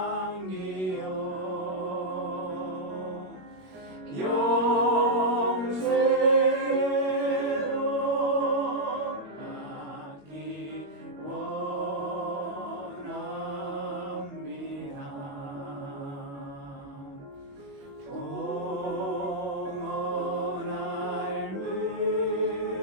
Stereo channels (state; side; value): late; left; 21 ms